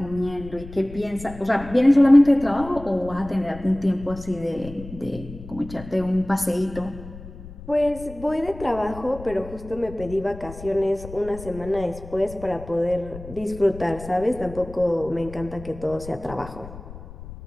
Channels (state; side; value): noise; left; rumble, 15 dB below the sound